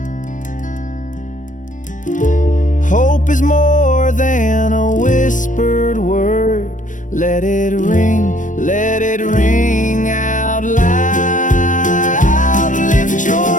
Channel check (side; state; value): right; late; 0.37 ms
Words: Hope is more than a whispered word. Let it ring out loud. Lift